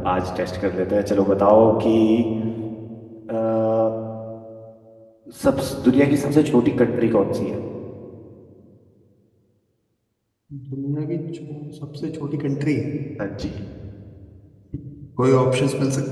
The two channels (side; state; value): both; identical; correlation 1.00